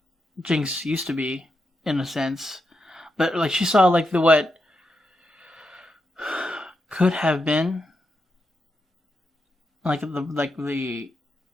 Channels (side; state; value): both; normal; correlation 0.85